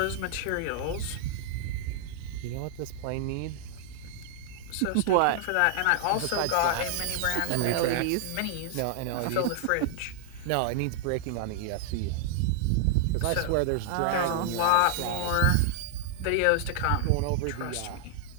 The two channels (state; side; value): different; both; correlation -0.01